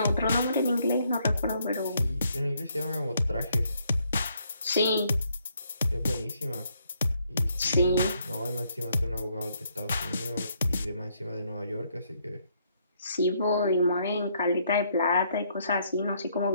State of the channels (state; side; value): inverted; both; correlation -0.71